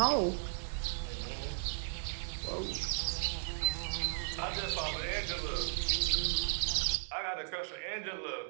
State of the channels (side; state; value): left; silent; digital silence